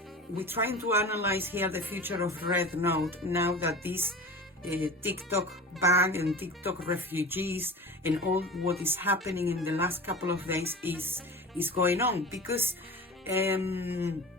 we're trying to analyze here the future of Rednote now that this TikTok ban and TikTok refugees and all what is happening in the last couple of days is going on, because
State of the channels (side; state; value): both; normal; correlation 0.34